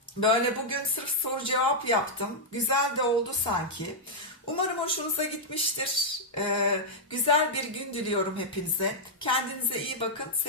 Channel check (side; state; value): both; normal; correlation -0.05